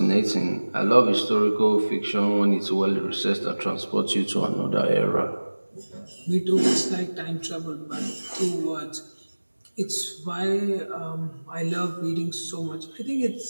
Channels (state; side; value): inverted; both; correlation -1.00